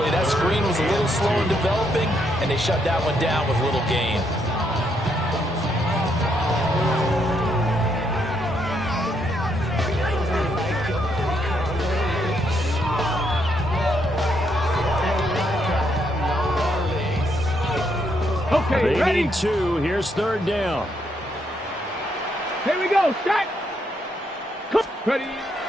That screen was a little slow in developing, and they shut that one down with little gain. Okay, they ready? need 2. Here's 3rd down. Here we go. Start. Ready?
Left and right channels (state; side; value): normal; both; correlation 0.75